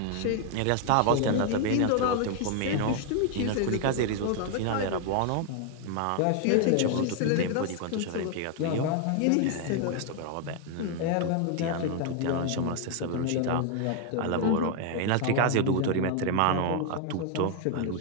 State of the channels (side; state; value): both; different; correlation 0.00